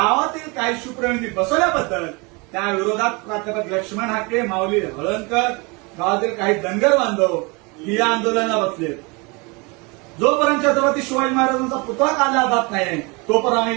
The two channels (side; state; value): left; quieter; 28.3 dB